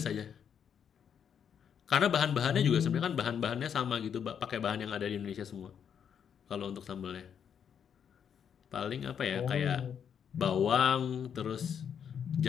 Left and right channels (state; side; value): quieter; right; 8.0 dB